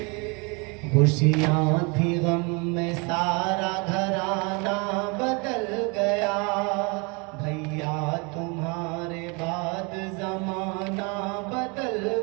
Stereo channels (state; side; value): quieter; left; 30.8 dB